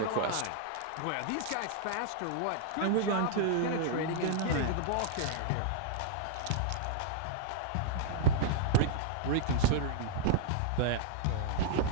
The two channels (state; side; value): different; both; correlation -0.01